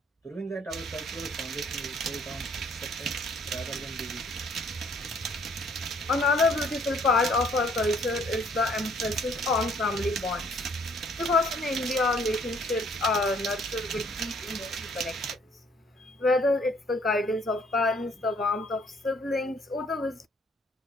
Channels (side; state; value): both; normal; correlation 0.62